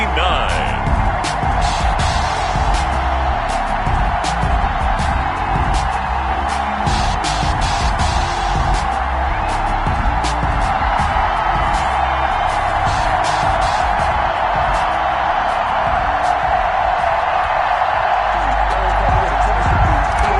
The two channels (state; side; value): identical; both; correlation 1.00